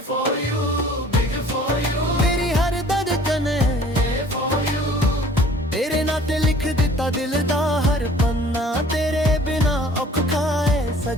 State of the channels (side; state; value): both; normal; correlation 0.52